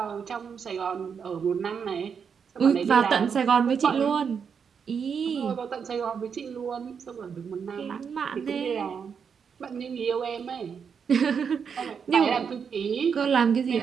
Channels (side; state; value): left; quieter; 6.6 dB